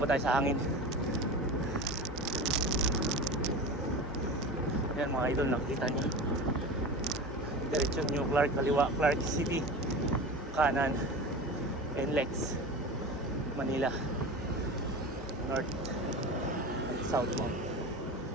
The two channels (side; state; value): both; normal; correlation 0.30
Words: tayo sa hangin. Yan mga idol, nakikita nyo diretsyon New Clark, kaliwa Clark City, kanan NLEX, Manila, north and southbound.